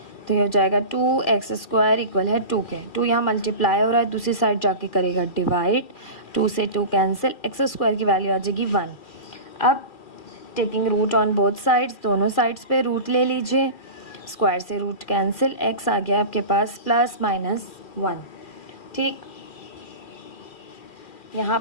तो ये हो जाएगा 2x² इक्वल है 2 के। 2 यहाँ मल्टीप्लाई हो रहा है, दूसरी साइड जाके करेगा डिवाइड, 2 से 2 कैंसिल, x² की वैल्यू आ जाएगी 1। अब taking root on both sides, दोनों साइड्स पे रूट ले लीजिए, स्क्वायर से रूट कैंसिल, x आ गया आपके पास +-1। ठीक, यहाँ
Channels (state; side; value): late; right; 2.4 ms